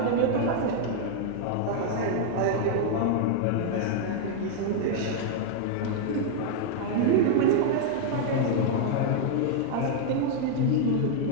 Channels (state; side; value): different; both; correlation -0.01